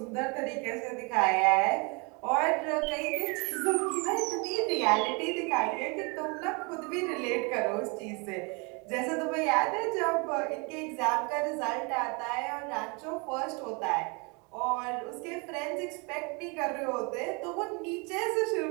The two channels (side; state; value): left; quieter; 31.0 dB